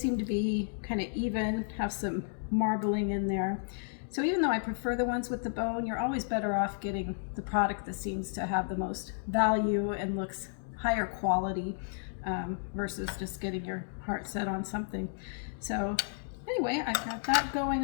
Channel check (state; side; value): silent; right; digital silence